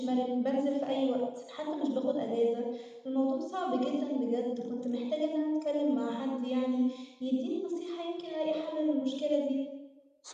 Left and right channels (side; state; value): both; identical; correlation 1.00